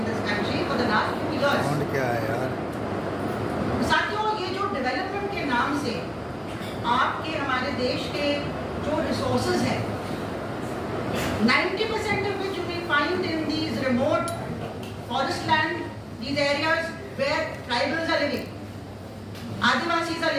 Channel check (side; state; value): both; identical; correlation 1.00